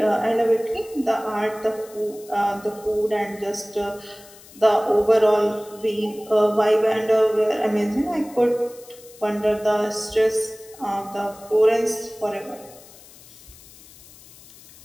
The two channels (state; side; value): noise; left; hiss, 22 dB below the sound